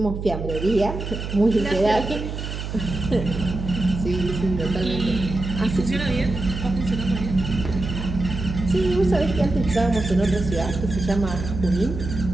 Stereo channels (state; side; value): noise; right; hum, 6 dB below the sound